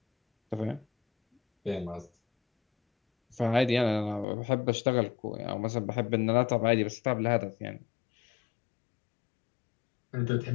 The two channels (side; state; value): right; drops out; at 4.2 s